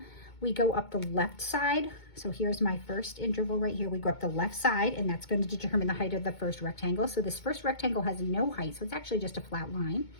we go up the left side. So here's my first interval right here. We go up the left side, and that's going to determine the height of the first rectangle. So this first rectangle has no height, so it's actually just a flat line.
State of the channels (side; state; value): right; late; 2.2 ms